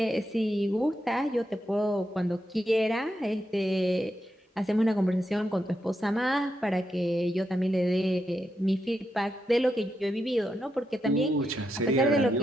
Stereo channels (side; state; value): both; normal; correlation 0.84